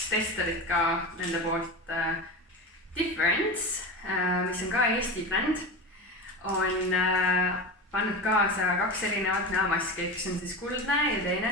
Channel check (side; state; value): both; normal; correlation 0.25